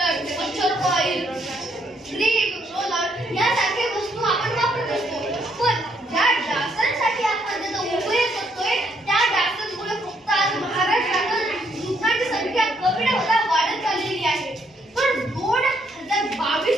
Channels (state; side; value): normal; both; correlation 0.72